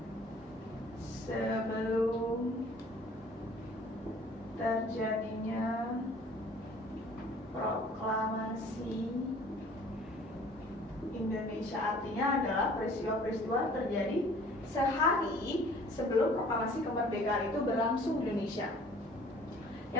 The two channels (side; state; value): both; normal; correlation 0.52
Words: sebelum terjadinya proklamasi Indonesia. Artinya adalah peristiwa-peristiwa terjadi sehari sebelum proklamasi kemerdekaan itu berlangsung di Indonesia.